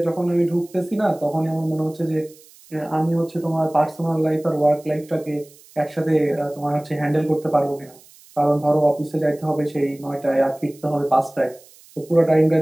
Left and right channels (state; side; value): noise; right; hiss, 25 dB below the sound